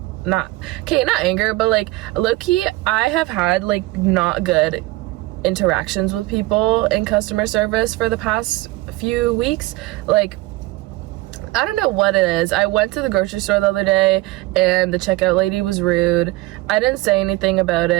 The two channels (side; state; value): left; quieter; 19.5 dB